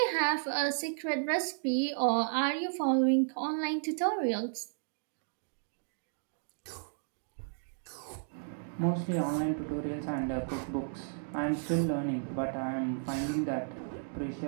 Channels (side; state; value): left; silent; digital silence